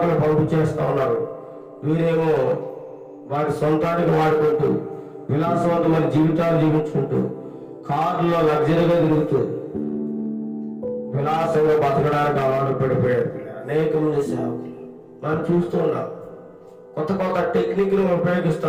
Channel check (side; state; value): both; identical; correlation 1.00